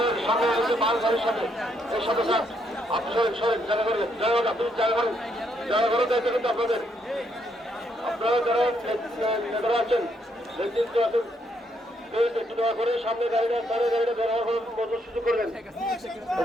সামনে মাল গাড়ির সামনে এই সাথে স্যার আপনি সরেন জায়গা করবেন আপনি জায়গা করেন দায়িত্ব কিন্তু আপনাদের আপনারা যারা নেতারা আছেন নেতৃত্ব আছেন একটু দয়া করে সামনে গাড়িটা বের হওয়ার মতো সুযোগ করবেন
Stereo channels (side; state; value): both; normal; correlation 0.74